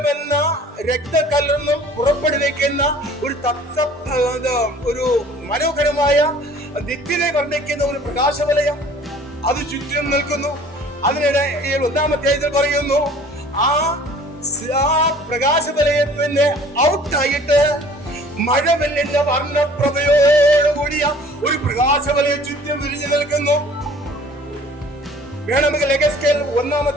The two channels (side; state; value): both; normal; correlation 0.51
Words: രക്തക്കല്ലെന്നും പുറപ്പെടുവിക്കുന്ന ഒരു മനോഹരമായ ദിക്കിനെ വർണ്ണിക്കുന്ന ഒരു പ്രകാശവലയം അത് ചുറ്റും നിൽക്കുന്നു. അതിനിടെ 1-ാം അധ്യായത്തിൽ പറയുന്നു, ആ പ്രകാശവലയത്തിന്റെ ഔട്ടായിട്ട് മഴവെല്ലിന്റെ വർണ്ണപ്രഭയോടുകൂടിയ ഒരു പ്രകാശവലയം ചുറ്റും വിരിഞ്ഞു നിൽക്കുന്നു. വേണമെങ്കിൽ യെഹെസ്കേൽ 1-ാം